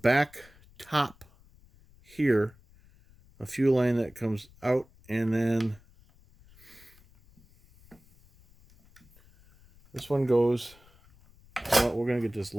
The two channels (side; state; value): left; noise; rumble, 27 dB below the sound